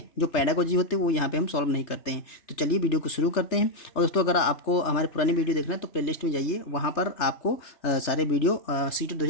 जो पैडागोजी होते हैं वो यहाँ पे हम सॉल्व नहीं करते हैं। तो चलिए वीडियो को शुरू करते हैं। और दोस्तों अगर आपको हमारे पुरानी वीडियो देखना है तो प्लेलिस्ट में जाइए, वहाँ पर आपको सारे वीडियो सीटेट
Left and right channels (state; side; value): late; right; 3.4 ms